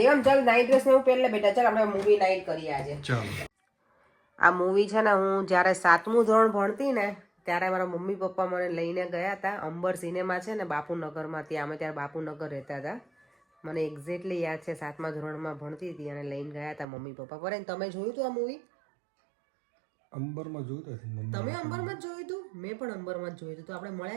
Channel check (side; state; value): left; drops out; at 16.9 s